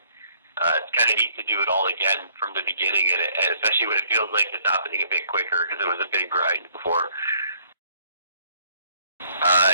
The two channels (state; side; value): inverted; both; correlation -0.63